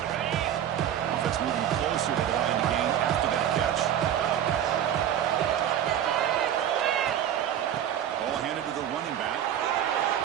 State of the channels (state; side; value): quieter; left; 10.3 dB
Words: moving closer to the line to gain after that catch. Ball handed to the running back.